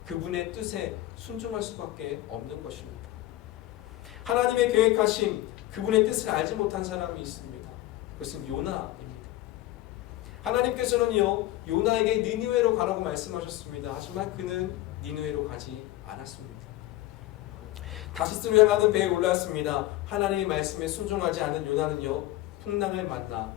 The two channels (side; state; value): right; quieter; 16.1 dB